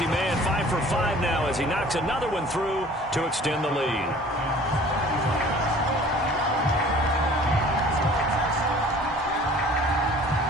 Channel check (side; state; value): both; normal; correlation 0.49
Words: man, 5 for 5 now as he knocks another one through to extend the lead.